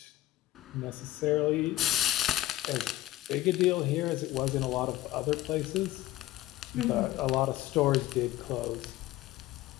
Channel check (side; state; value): right; quieter; 15.7 dB